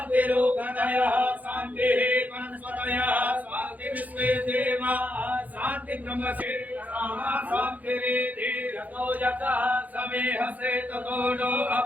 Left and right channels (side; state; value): left; late; 0.079 ms